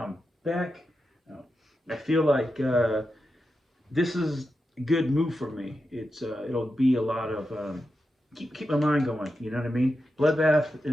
back. I feel like this is good move for me. It'll be a lot of keep my mind going. You know what I mean? Bloodbath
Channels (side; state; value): both; normal; correlation 0.89